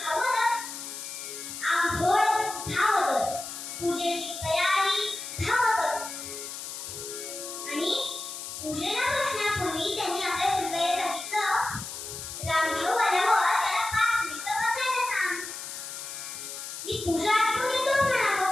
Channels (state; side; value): noise; left; hiss, 8 dB below the sound